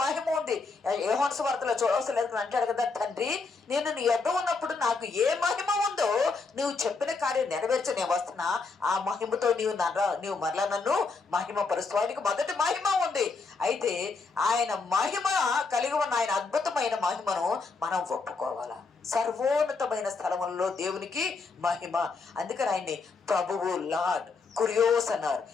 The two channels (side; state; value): right; quieter; 4.3 dB